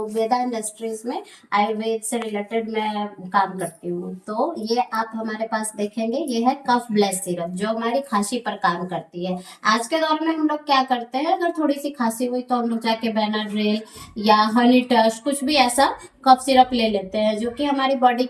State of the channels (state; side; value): identical; both; correlation 1.00